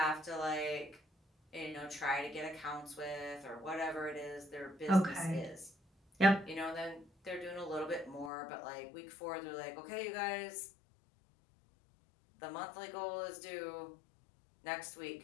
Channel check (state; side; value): drops out; right; at 8.3 s